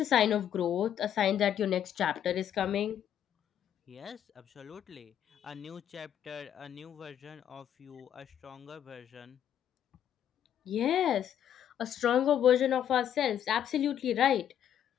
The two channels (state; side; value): quieter; right; 10.0 dB